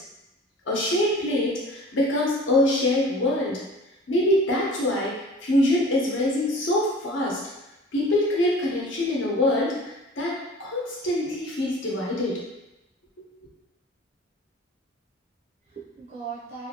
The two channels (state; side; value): normal; both; correlation 0.44